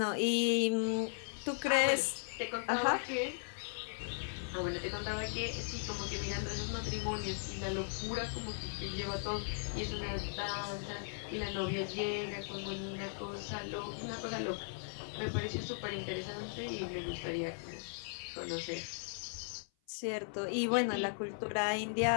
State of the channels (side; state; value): right; silent; 53 dB below the other